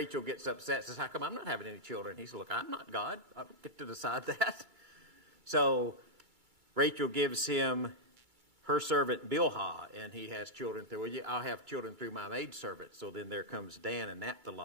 gets upset, says, how come I'm not having any children? He says, look, I'm not God. I don't get to decide that. So Rachel gives him her servant Bilhah, and he has children through, I'll have children through my maidservant. So then there comes Dan and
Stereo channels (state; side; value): late; left; 2.3 ms